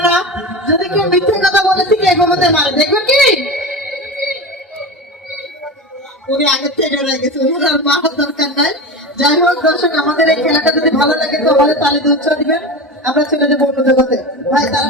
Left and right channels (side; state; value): both; normal; correlation 0.25